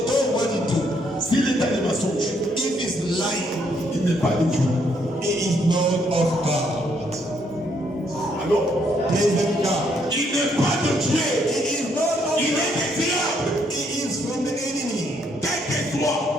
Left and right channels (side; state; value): both; normal; correlation 0.71